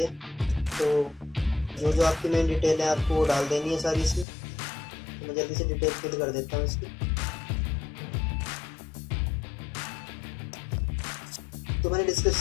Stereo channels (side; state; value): right; drops out; at 4.2 s